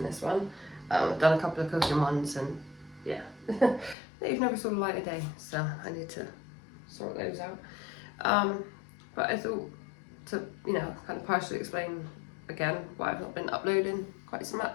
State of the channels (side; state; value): right; drops out; at 4.0 s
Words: this one. I've done a couple of cooking ones and yeah, they've never saw the light of day, so I need to sort those out. But I thought to, kind of partially explain again why I've not been uploading quite so